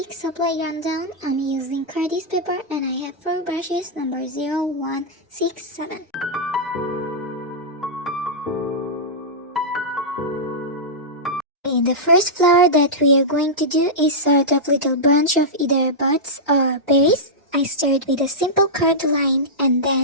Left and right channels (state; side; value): normal; both; correlation -0.11